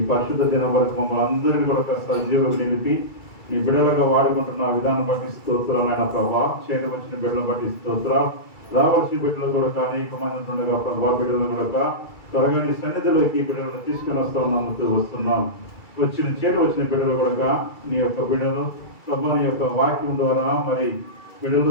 పరిశుద్ధ దినం వరకు మమ్మల్ని అందరినీ కూడా సజీవులు నిలిపి నీ బిడ్డలుగా వాడుకుంటున్న విధానం బట్టి స్తోత్రాలైన ప్రభా. చేతి వచ్చిన బిడ్డలను బట్టి స్తోత్రాలు. రావాల్సిన బిడ్డలు కూడా అనేక మంది ఉండగా ప్రభా, బిడ్డలు కూడా త్వరగా నీ సన్నిధిలోకి బిడ్డలను తీసుకుని వస్తున్నాం. వచ్చిన బిడ్డలు కూడా నీ యొక్క బిడ్డలు ప్రభా నీ యొక్క వాక్యం ద్వారా మరి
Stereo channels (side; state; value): right; late; 2.3 ms